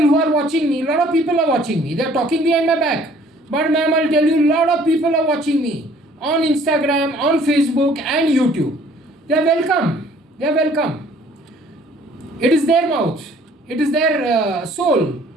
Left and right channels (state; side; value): normal; both; correlation 0.57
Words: who are watching me, a lot of people are watching me. They are talking behind my back. But ma'am, I'll tell you, a lot of people are watching me on Instagram, on Facebook and YouTube. They are welcome. They are welcome. It is their mouth. It is their soul